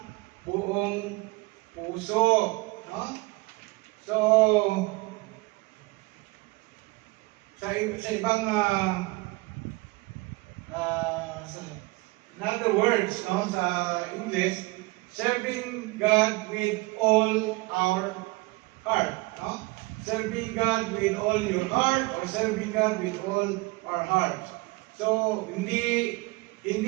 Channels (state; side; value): quieter; left; 23.2 dB